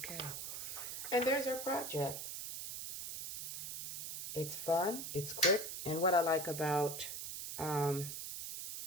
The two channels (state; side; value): noise; right; hiss, 6 dB below the sound